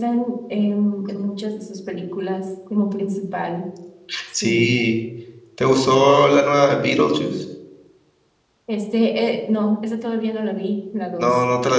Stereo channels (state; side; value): identical; both; correlation 1.00